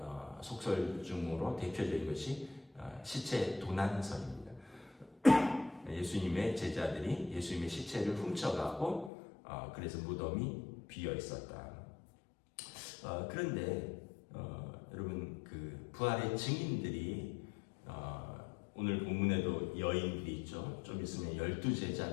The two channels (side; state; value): right; drops out; at 9.1 s